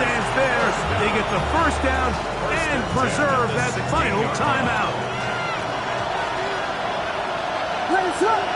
there. They get the 1st down and preserve that final timeout.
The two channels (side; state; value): both; identical; correlation 1.00